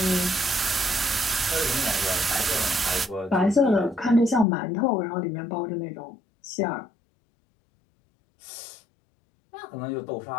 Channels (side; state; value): right; drops out; at 4.5 s